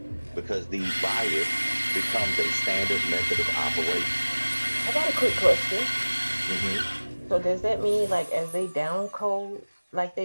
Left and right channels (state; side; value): inverted; both; correlation -1.00